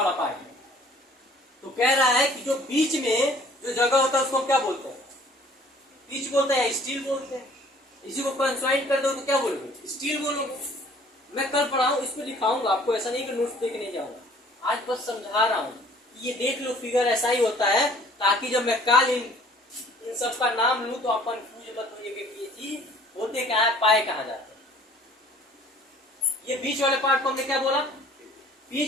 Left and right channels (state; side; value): normal; both; correlation 0.54